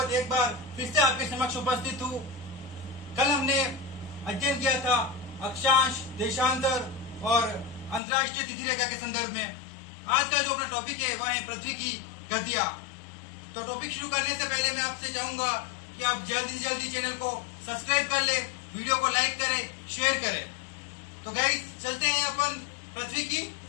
एक बार फिर से आपके समक्ष उपस्थित हूँ। कल हमने अध्ययन किया था अक्षांश, देशांतर और अंतर्राष्ट्रीय तिथि रेखा के संदर्भ में। आज का जो अपना टॉपिक है वह है पृथ्वी की गतियां। तो टॉपिक शुरू करने से पहले मैं आपसे चाहूंगा कि आप जल्दी से जल्दी चैनल को सब्सक्राइब कर ले, वीडियो को लाइक करें, शेयर करें। तो गाइस चलते हैं अपन पृथ्वी की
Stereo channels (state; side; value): drops out; right; at 8.0 s